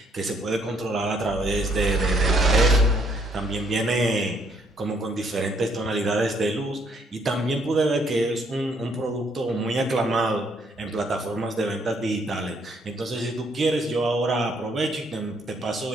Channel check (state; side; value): normal; both; correlation 0.68